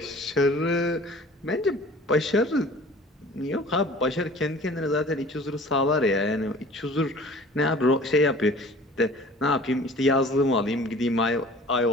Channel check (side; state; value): both; normal; correlation 0.46